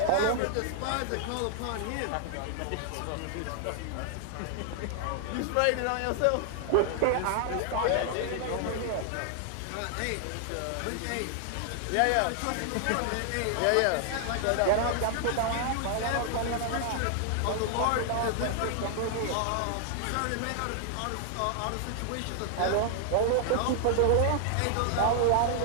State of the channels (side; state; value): both; different; correlation 0.00